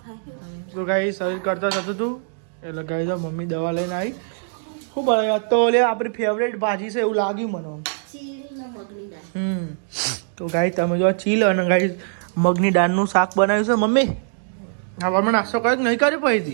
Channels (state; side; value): silent; left; digital silence